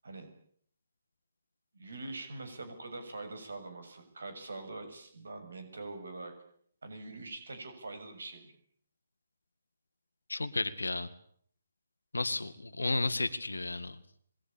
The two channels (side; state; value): both; inverted; correlation -0.94